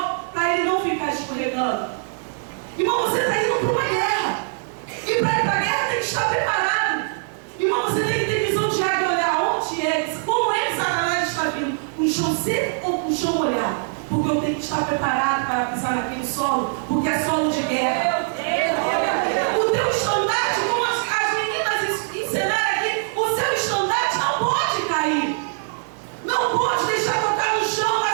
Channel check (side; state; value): left; silent; digital silence